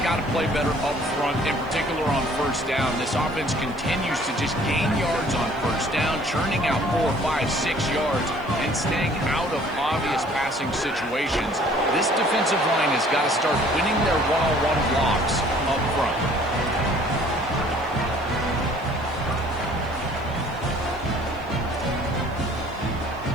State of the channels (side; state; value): right; noise; hiss, 29 dB below the sound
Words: to play better up front, in particular on first down. This offense continues to just gain yards on first down, churning out 4, 5, 6 yards, and staying out of obvious passing situations. This defensive line has got to start winning their one-on-one blocks up front.